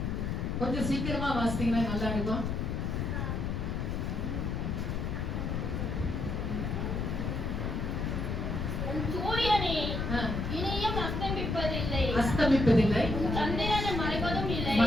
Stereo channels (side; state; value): left; noise; rumble, 1 dB below the sound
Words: கொஞ்சம் சீக்கிரமா வாசித்தீங்கன்னா நல்லா இருக்கும். சூரியனே இனியும் அஸ்தமிப்பதில்லை, சந்திரன் மறைவதும் இல்லை.